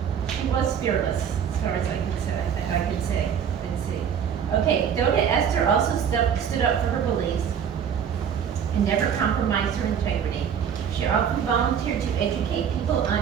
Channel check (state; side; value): quieter; left; 8.0 dB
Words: she was fearless, as far as I could say. Okay, Doda Esther also stood up for her beliefs and never compromised her integrity. She often volunteered to educate people